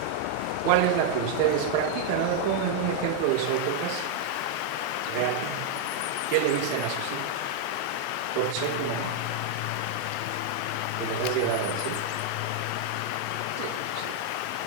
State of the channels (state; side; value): different; both; correlation 0.00